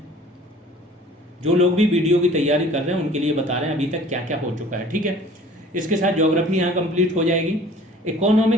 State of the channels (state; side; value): normal; both; correlation 0.49